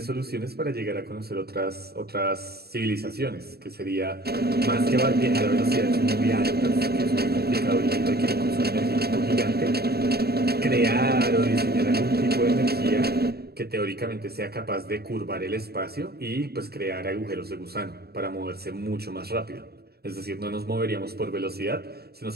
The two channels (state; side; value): late; left; 0.46 ms